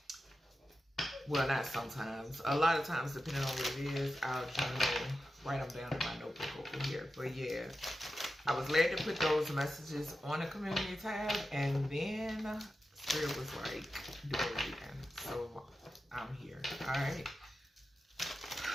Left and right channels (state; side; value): normal; both; correlation 0.91